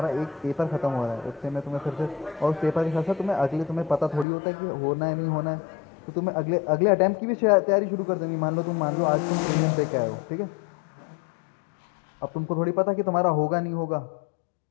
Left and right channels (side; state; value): right; drops out; at 4.2 s